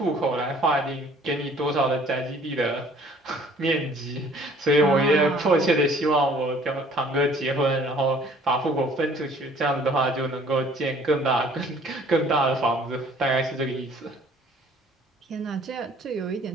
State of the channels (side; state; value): both; normal; correlation 0.55